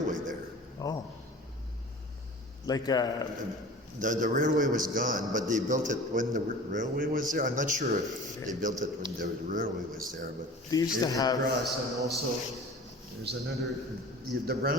there. Oh. Like the railway was gone, but they built it when the railway was there. I'm not sure if they built it when the railway was there, but they used to have. Across, and also there's the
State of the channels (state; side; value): normal; both; correlation 0.40